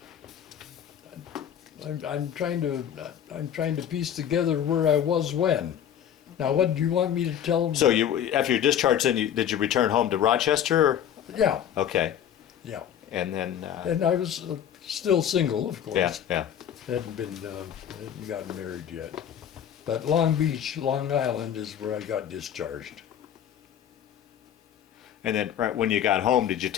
I'm trying to piece together where I was when. Now, what do you want me to tell them? So after your discharge, then did you return home to Rochester? Or? Yeah, Okay, yeah. and then. And I was still single, of course. Yeah, yeah. Hadn't gotten married yet. But Long Beach, Long Island is where I got discharged. And then right when you got home, did you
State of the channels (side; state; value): right; quieter; 9.6 dB